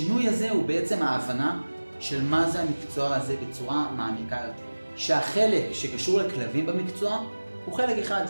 הזה הוא בעצם ההבנה של מה זה המקצוע הזה בצורה מעמיקה יותר. שהחלק שקשור לכלבים במקצוע הוא חלק אחד,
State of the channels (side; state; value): both; inverted; correlation -1.00